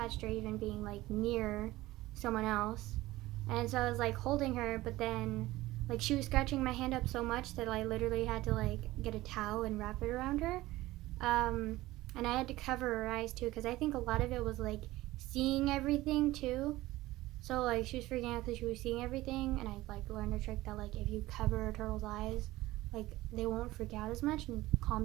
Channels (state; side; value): quieter; left; 17.7 dB